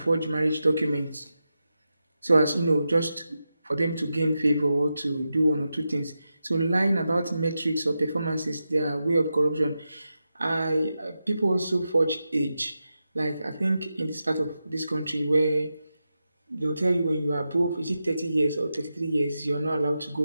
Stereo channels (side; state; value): both; inverted; correlation -0.90